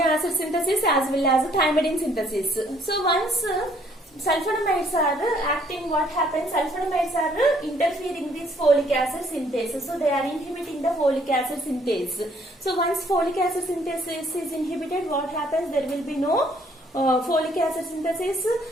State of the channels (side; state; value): both; normal; correlation 0.64